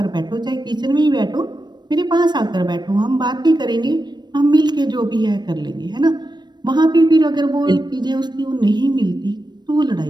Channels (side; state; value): left; late; 0.21 ms